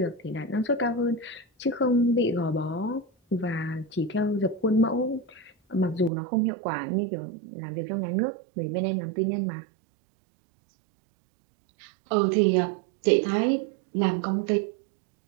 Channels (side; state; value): left; drops out; at 6.1 s